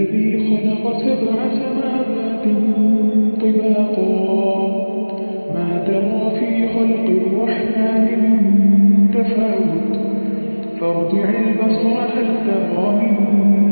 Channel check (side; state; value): both; inverted; correlation -1.00